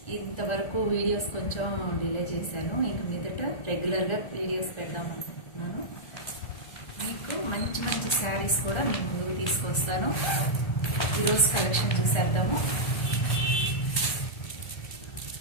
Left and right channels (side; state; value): right; late; 1.4 ms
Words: ఇంతవరకు వీడియోస్ కొంచెం డిలే చేశాను. ఇంక మీదట రెగ్యులర్గా వీడియోస్ పెడదామనుకుంటున్నాను. మీకు మంచి శారీస్ కూడా మీ ముందుకు తీసుకొస్తాను. ఈరోజు కలెక్షన్ చూసేద్దాము.